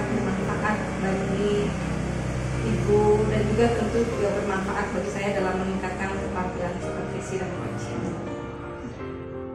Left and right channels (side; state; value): both; identical; correlation 1.00